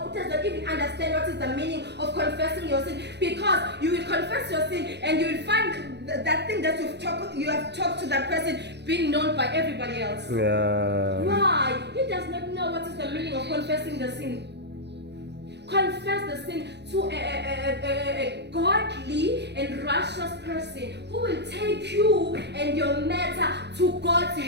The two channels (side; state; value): left; late; 0.50 ms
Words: does not even understand what is the meaning of confessing your sin. Because you will confess your sin and you will find that thing that you have talked to that person being known by everybody else. Why? He does not know what is the meaning of confessing the sin. Confess the sin to a godly and righteous person who will take you and your matter to God's